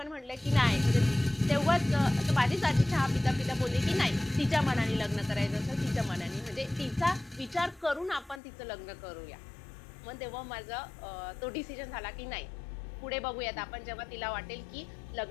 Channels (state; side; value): drops out; right; at 8.4 s